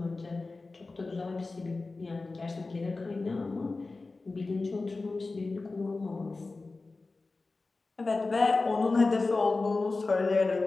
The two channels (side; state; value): right; quieter; 3.6 dB